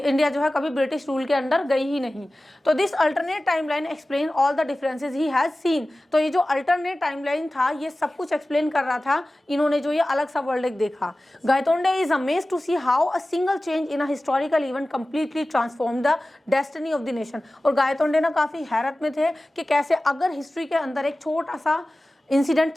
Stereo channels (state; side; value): normal; both; correlation 0.96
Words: जो है कभी ब्रिटिश रूल के अंडर गई ही नहीं। तो this alternate timeline explain all the differences he has seen, तो ये जो अल्टरनेट टाइमलाइन था ये सब कुछ एक्सप्लेन कर रहा था, इन्होंने जो ये अलग सा वर्ल्ड देखा। Gaitonde is amazed to see how a single change in a historical event completely transform the destiny of the nation. और गायतोंडे ना काफी हैरत में थे कि कैसे अगर हिस्ट्री के अंदर एक छोटा सा इंसिडेंट